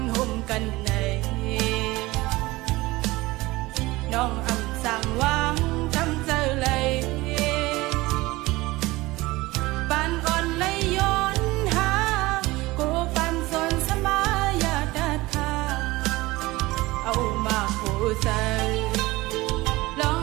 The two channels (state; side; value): quieter; left; 20.2 dB